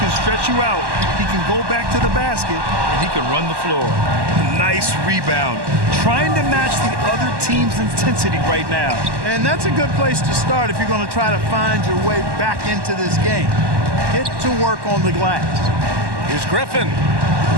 stretch you out. He can go back to the basket, and he can run the floor. Nice rebound. Trying to match the other team's intensity right now. And that's a good place to start if you're going to try to find your way back into this game. Get to work on the glass. Here's Griffin.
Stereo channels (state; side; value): late; left; 1.1 ms